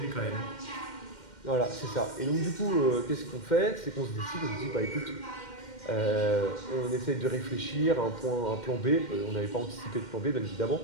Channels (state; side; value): late; right; 2.1 ms